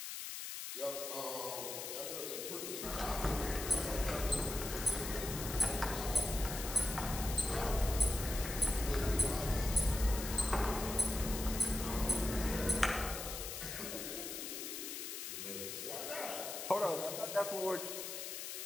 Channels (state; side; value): noise; left; hiss, 6 dB below the sound